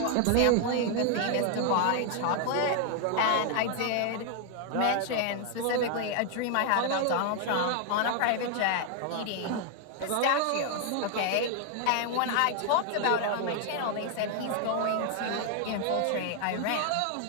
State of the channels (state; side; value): different; both; correlation 0.00